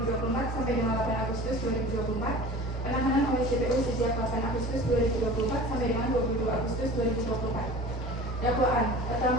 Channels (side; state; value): both; normal; correlation 0.40